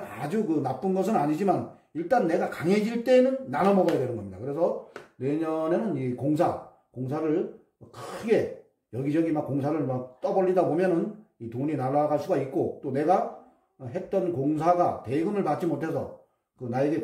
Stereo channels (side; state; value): both; identical; correlation 1.00